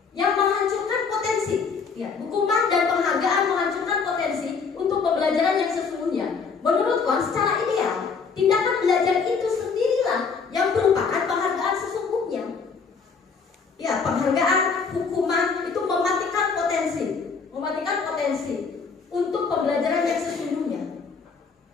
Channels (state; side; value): quieter; right; 5.3 dB